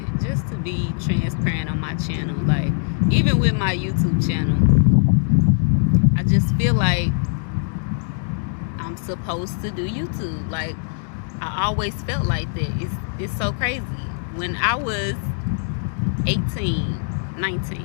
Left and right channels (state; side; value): silent; right; digital silence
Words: just to be transparent on my channel. Like, even with my YouTube channel, I just feel like I'm supposed to do YouTube. Like, I always felt like that. It's so crazy. When I was 18,